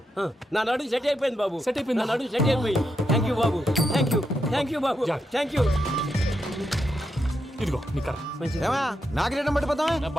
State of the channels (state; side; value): normal; both; correlation 0.84